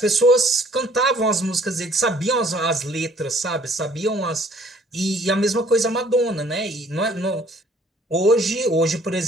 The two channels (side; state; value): both; normal; correlation 0.58